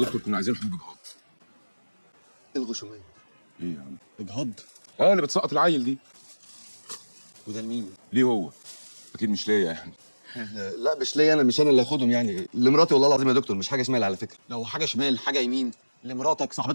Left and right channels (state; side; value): inverted; both; correlation -1.00